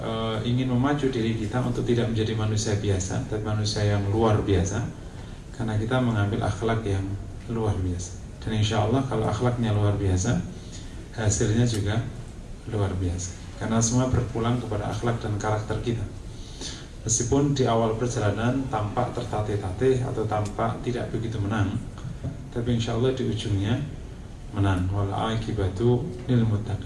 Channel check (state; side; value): identical; both; correlation 1.00